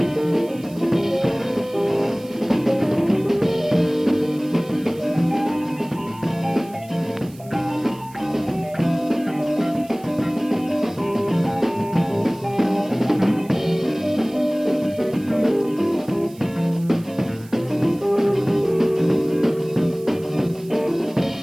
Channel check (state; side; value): noise; right; hiss, 24 dB below the sound